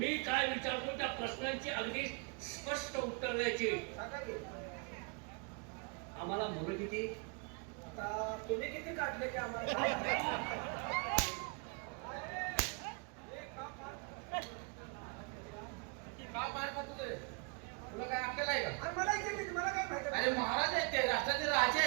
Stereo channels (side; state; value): left; quieter; 34.8 dB